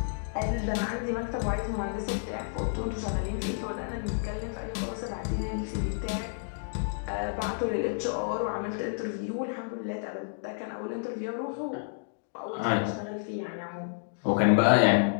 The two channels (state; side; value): silent; right; digital silence